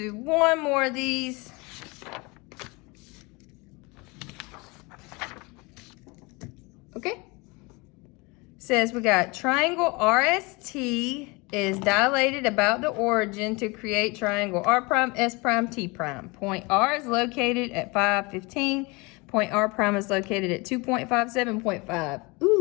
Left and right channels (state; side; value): quieter; right; 26.5 dB